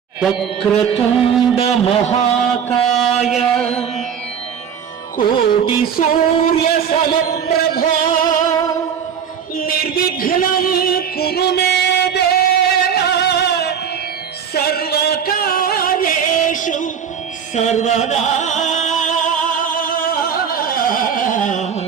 వక్రతుండ మహాకాయ కోటి సూర్య సమప్రభా నిర్విఘ్నం కురు మే దేవ సర్వకార్యేషు సర్వదా.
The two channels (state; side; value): quieter; left; 7.7 dB